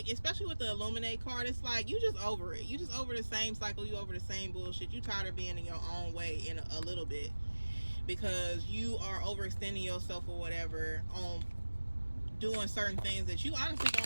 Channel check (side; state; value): both; inverted; correlation -1.00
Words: especially with the Illuminate card, it's like you just over it. You just over the same cycle. You over the same bullshit. You tired of being in your own way in a little bit, because you are overextending yourself or whatever on doing certain things that you honestly